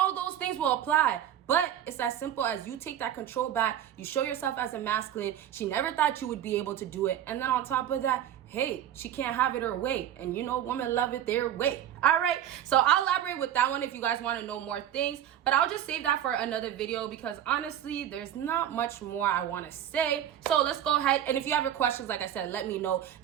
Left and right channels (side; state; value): left; quieter; 10.7 dB